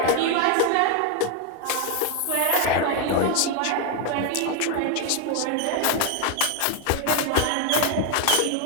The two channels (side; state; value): both; different; correlation 0.01